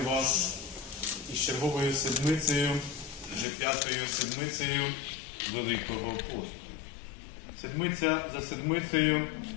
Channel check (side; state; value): right; drops out; at 3.5 s